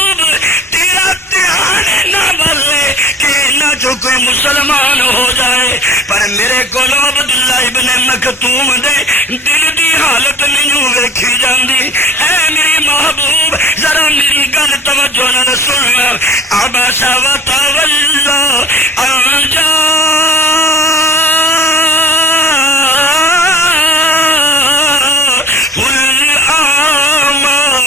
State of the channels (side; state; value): both; normal; correlation 0.49